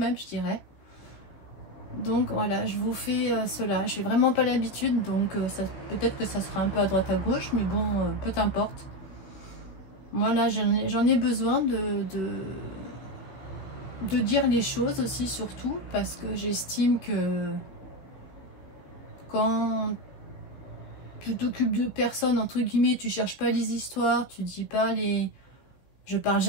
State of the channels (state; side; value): late; right; 15 ms